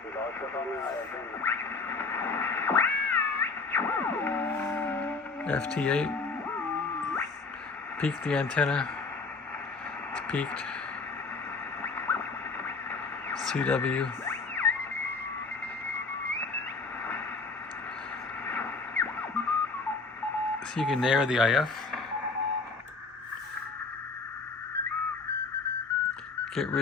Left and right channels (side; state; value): right; quieter; 4.2 dB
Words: FT8. Peak the antenna. It's peaked. CW. So you can narrow the IF. Get